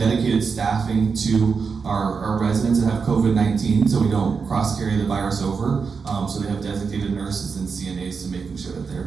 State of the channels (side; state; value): left; quieter; 5.4 dB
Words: staffing to our residents that have COVID-19, so we don't cross-carry the virus over. So they have designated nurses and CNAs to making sure that